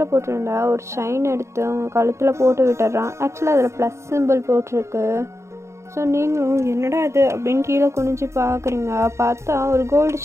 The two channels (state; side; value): late; left; 0.14 ms